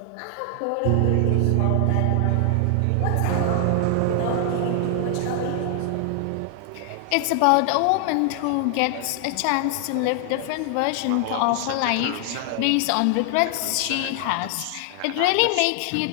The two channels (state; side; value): different; both; correlation 0.00